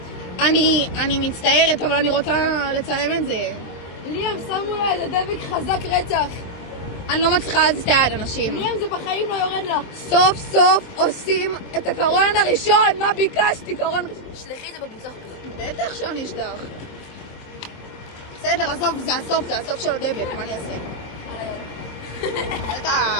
אני מצטערת, אבל אני רוצה לצלם את זה. ליאם, שמו לה איזה דבק חזק רצח. אני לא מצליחה להזיז את היד, אנשים. ליאם, זה בחיים לא יורד לה. סוף סוף עושים את הקרון הראשון, מה ביקשתי? קרון ראשון. שלחי את זה בקבוצה. בטח שאני אשלח. בסדר, עזוב, זה הסוף של הדבק, מה אני אעשה?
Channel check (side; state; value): right; late; 23 ms